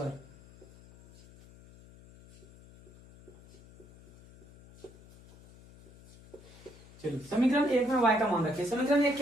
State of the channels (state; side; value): noise; left; hum, 22 dB below the sound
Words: चलिए समीकरण 1 में y का मान रखिए। समीकरण 1